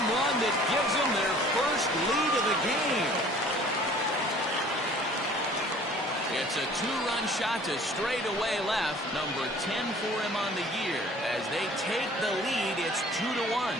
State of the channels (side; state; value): both; normal; correlation 0.51